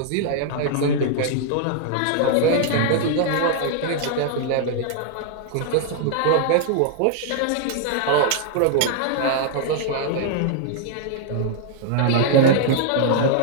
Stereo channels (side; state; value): both; different; correlation 0.00